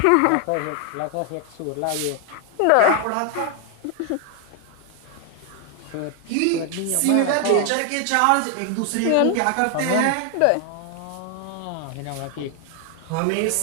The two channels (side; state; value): both; different; correlation 0.00